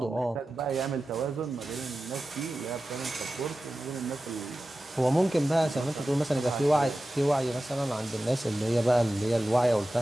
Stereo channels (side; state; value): both; normal; correlation 0.94